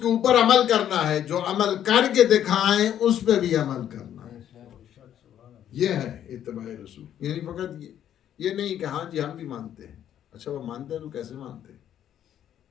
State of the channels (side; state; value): right; quieter; 10.4 dB